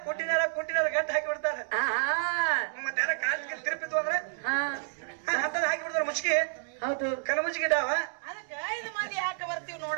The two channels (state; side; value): silent; left; digital silence